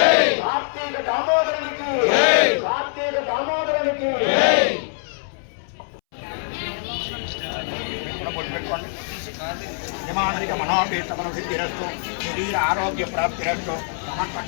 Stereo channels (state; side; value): silent; right; 63 dB below the other